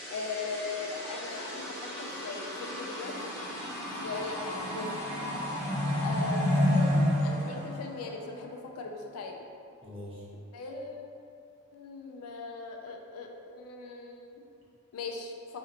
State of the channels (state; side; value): normal; both; correlation 0.57